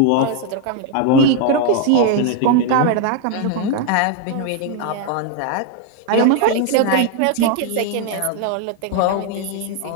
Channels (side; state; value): both; different; correlation 0.00